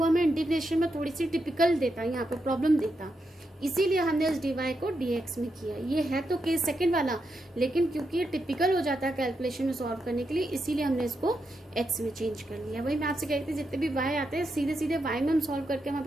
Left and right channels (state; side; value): normal; both; correlation 0.84